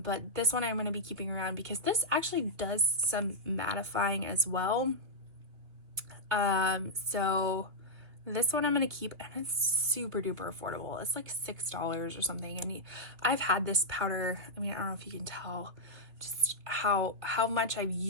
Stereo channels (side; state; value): left; late; 2.9 ms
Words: this one I'm going to be keeping around because this actually does some mattifying as well. So this one I'm going to keep, and it's super duper affordable. It's like $6 or something, and I've had this powder, I mean, I don't know if you can tell just how much I've